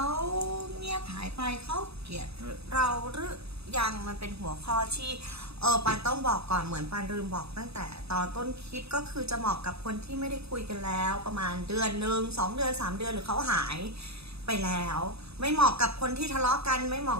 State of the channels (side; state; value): left; late; 0.78 ms